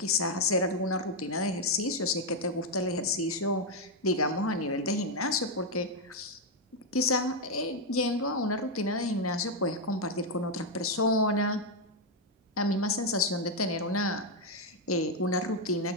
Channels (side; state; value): both; normal; correlation 0.02